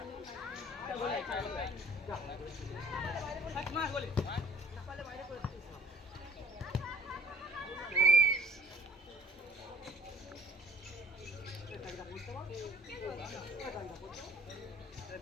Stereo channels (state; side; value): normal; both; correlation 0.51